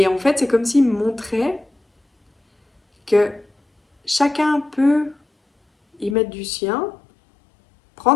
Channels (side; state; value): right; drops out; at 6.2 s